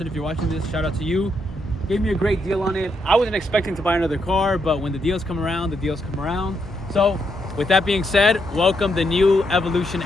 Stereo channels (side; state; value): both; normal; correlation 0.79